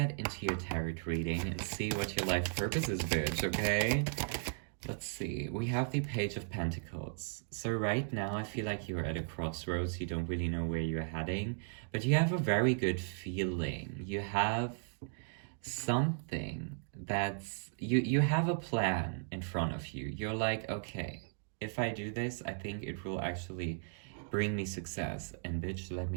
into your tarot reading and see what your life purpose is, bitch, okay? Let's see. We have the Page of Pentacles. So right now, I feel like you're at a crossroads. You don't really know where you're heading, but you have a very good feeling. You have something you have a plan in front of you. You're like, okay, if I do this, I think it will actually bring me success. And bitch, let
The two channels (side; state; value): left; silent; digital silence